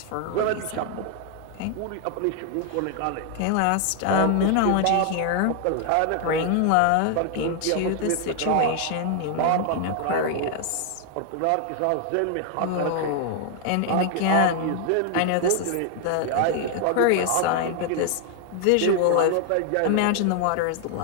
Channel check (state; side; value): different; both; correlation 0.00